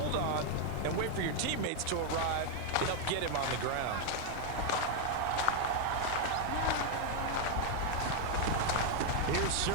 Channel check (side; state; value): both; different; correlation 0.00